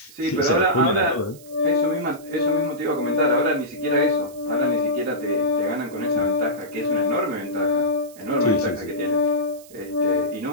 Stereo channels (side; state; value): right; noise; hiss, 22 dB below the sound